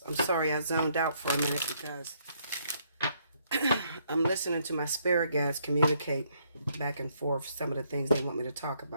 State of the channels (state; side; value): inverted; both; correlation -0.71